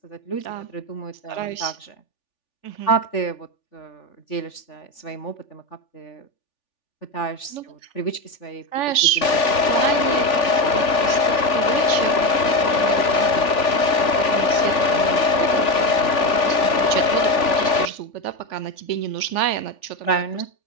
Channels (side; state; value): right; late; 3.4 ms